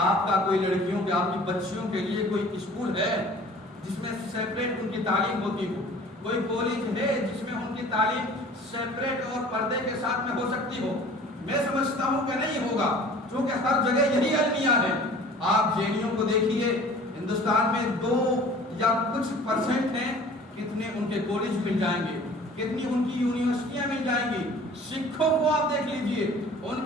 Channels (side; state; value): both; normal; correlation 0.47